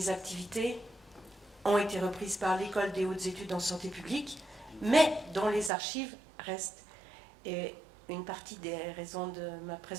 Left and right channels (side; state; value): left; drops out; at 5.7 s